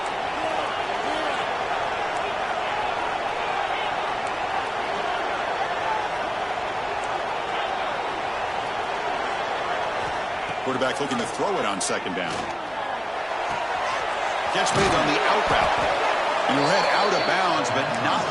Quarterback looking to throw it on 2nd down. Catch made on the out route. And he'll head out of bounds, but not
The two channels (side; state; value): both; identical; correlation 1.00